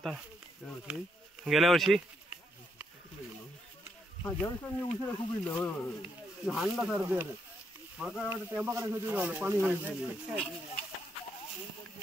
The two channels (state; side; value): normal; both; correlation 0.77